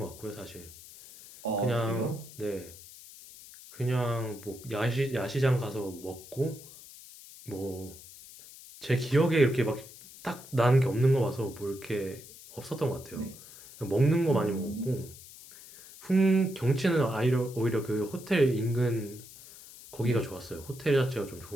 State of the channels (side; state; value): left; noise; hiss, 18 dB below the sound